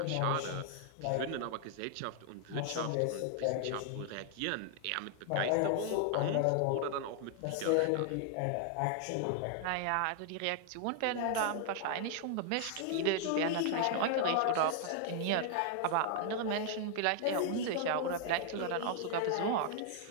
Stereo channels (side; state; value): both; different; correlation 0.00